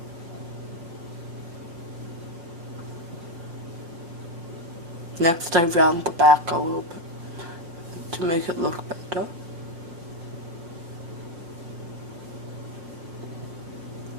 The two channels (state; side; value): late; left; 6.0 ms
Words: Next I round the back a little bit to make it look better.